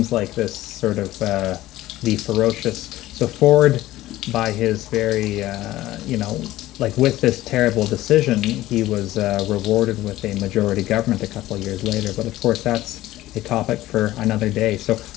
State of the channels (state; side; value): quieter; right; 15.9 dB